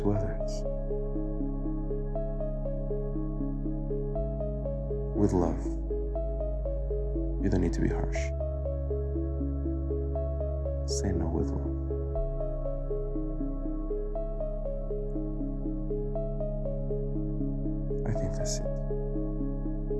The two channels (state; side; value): identical; both; correlation 1.00